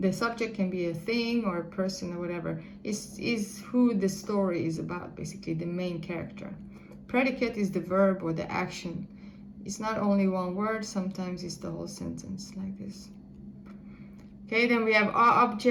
subject can be a thing or a person or whatever. Is who the story is about, basically, the main character. Predicate is the verb or the action. It's not only one word, sometimes it's the whole sentence, like this. Okay, then we have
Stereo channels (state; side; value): identical; both; correlation 1.00